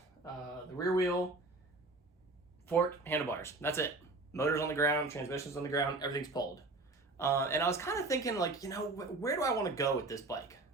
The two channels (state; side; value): quieter; left; 3.1 dB